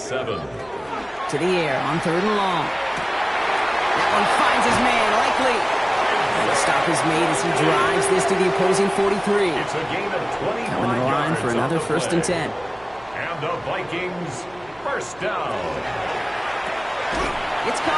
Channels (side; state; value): right; noise; hum, 27 dB below the sound